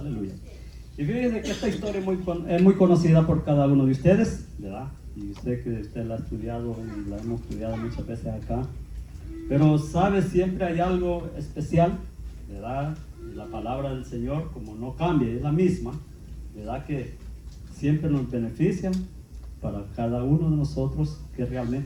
Y fíjense que esta historia es muy conocida por cada uno de ustedes, ¿verdad? Y sé que usted la ha estudiado y la hemos estudiado muchas veces acá. Pero sabe, siempre hay algo especial, ¿verdad? Y la palabra del Señor, como no cambia, es la misma, ¿verdad? Que siempre nos beneficia para cada uno de nosotros que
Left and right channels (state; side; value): identical; both; correlation 1.00